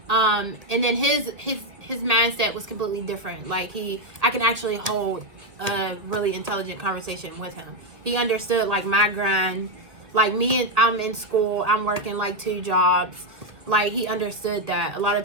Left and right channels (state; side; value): late; left; 1.8 ms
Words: and then his mindset was completely different. Like I can actually hold a really intelligent conversation with him. He understood like my grind, like me, and I'm in school, I'm working like 2 jobs. Like he understood that. A lot